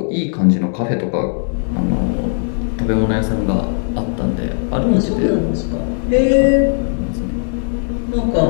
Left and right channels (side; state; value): right; silent; digital silence